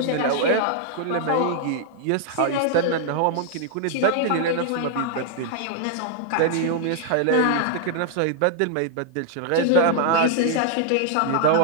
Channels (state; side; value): different; both; correlation -0.01